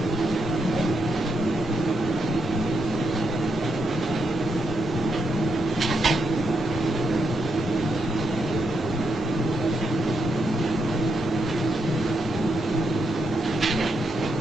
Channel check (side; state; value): both; normal; correlation 0.80